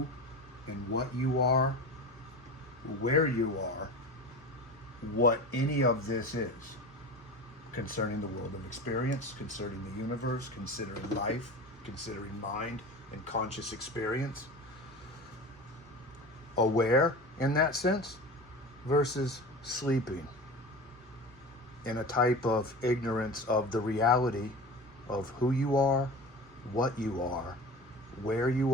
and what you are, where you are, what any of this is, concerning the world of experience, concerning the universe, considering life, considering mind and conscious experience. Aware in that sense versus sleeping in a type of ignorance of the reality of who you are, what you are, where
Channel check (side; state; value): both; normal; correlation 0.32